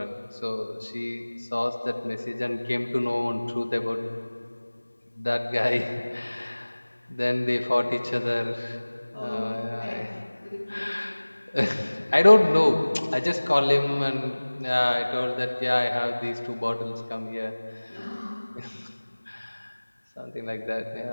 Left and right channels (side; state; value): both; inverted; correlation -1.00